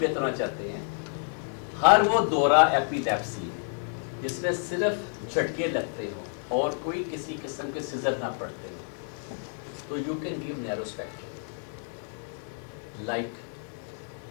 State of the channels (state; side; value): silent; right; 57 dB below the other